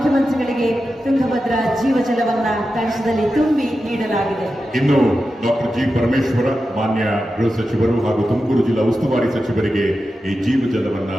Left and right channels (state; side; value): normal; both; correlation 0.91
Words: ತುಂಗಭದ್ರಾ ಜೀವ ಜಲವನ್ನ ಕಳಸದಲ್ಲಿ ತುಂಬಿ ನೀಡಲಾಗಿದೆ. ಇನ್ನು ಡಾಕ್ಟರ್ ಜಿ ಪರಮೇಶ್ವರ ಮಾನ್ಯ ಗೃಹ ಸಚಿವರು ಹಾಗೂ ತುಮಕೂರು ಜಿಲ್ಲಾ ಉಸ್ತುವಾರಿ ಸಚಿವರಿಗೆ ಈ ಜೀವ ಜಲವನ್ನ